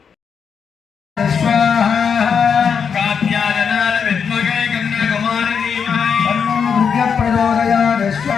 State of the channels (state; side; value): quieter; right; 6.6 dB